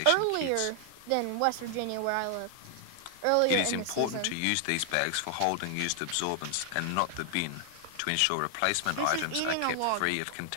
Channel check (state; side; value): different; both; correlation 0.00